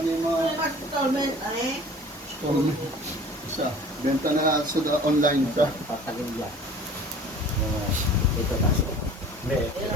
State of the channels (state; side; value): normal; both; correlation 0.46